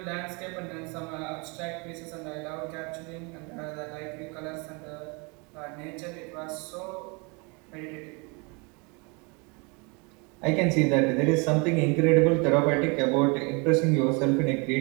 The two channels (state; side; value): quieter; left; 30.6 dB